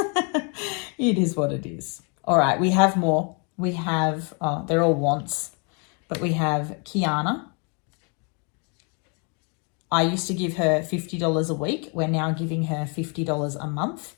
It is what it is. All right, we have more. We have, they're all wants, but we have Kiana. I used to give her $50 a week. We're now giving her $50 a month.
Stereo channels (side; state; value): right; quieter; 36.1 dB